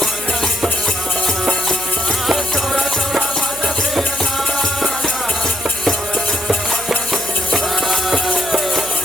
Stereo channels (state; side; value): noise; right; hum, 18 dB below the sound